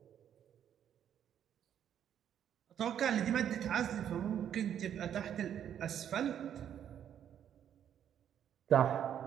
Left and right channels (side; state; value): left; quieter; 9.5 dB